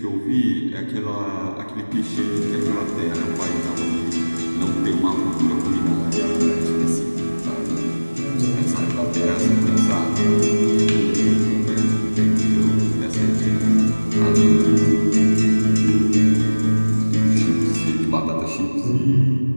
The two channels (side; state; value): both; inverted; correlation -1.00